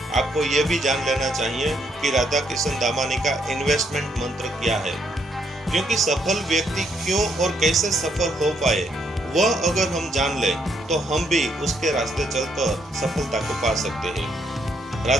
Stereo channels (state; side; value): normal; both; correlation 0.73